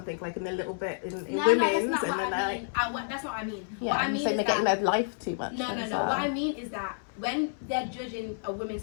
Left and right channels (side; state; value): right; silent; 58 dB below the other